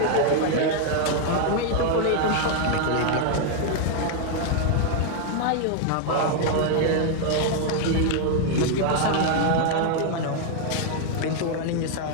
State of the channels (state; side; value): different; both; correlation 0.00